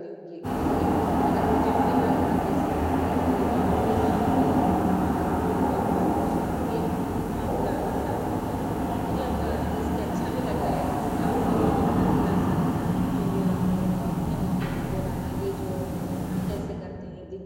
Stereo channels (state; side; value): identical; both; correlation 1.00